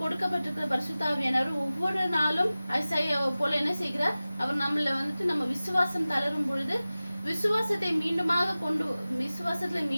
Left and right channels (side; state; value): both; inverted; correlation -0.97